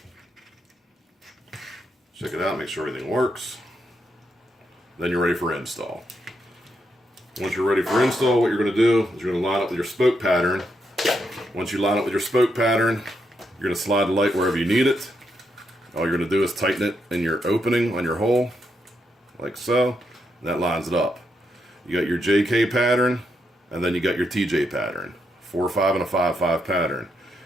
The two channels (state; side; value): normal; both; correlation 0.80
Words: Check it out, make sure everything works. Then you're ready for install. Once you're ready for install, what you're going to do is you're going to line up with your spoke pattern. Once you line up with your spoke pattern, you're going to slide the light wherever you need it. All you're going to do is tighten it in your opening on your hole, like so, and that lines it up. You got your JK pattern, and then you got your TJ pattern. 4-5 and a 5-5 pattern.